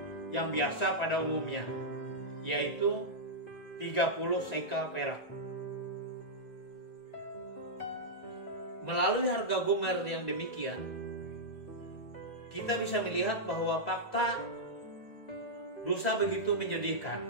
yang biasa pada umumnya, yaitu 30 sekal perak. Melalui harga gomer yang demikian, kita bisa melihat bahwa fakta dosa begitu menyedihkan.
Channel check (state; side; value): late; right; 2.0 ms